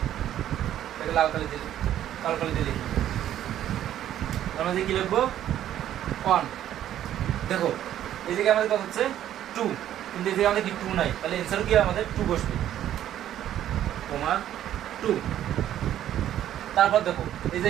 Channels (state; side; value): quieter; left; 11.6 dB